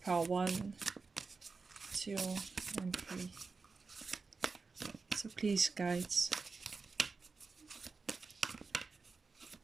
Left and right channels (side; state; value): left; quieter; 4.4 dB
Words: pile 1, 2 and 3. So please, guides,